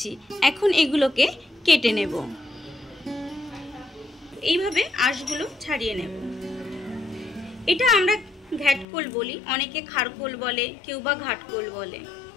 এখন এগুলোকে কেটে নেব। এইভাবে আঁশগুলো ছাড়িয়ে নেব। এটা আমরা ঘ্যাটকল বলি, অনেকে খারকোল বলে, কেউ বা ঘাটকোল বলে।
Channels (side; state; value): right; drops out; at 8.8 s